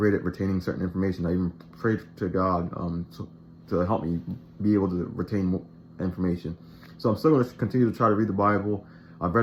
at retaining certain information. I even prayed to God to help me be able to retain information. So I'm still going to continue to try to read the Bible. I've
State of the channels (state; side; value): identical; both; correlation 1.00